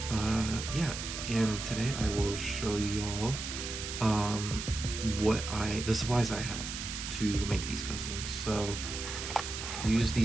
yeah, and today I will show y'all the supplies I have to make these customs. So use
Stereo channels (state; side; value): noise; right; hiss, 6 dB below the sound